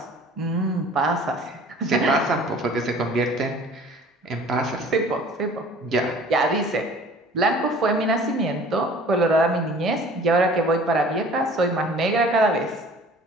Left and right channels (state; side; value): normal; both; correlation 0.48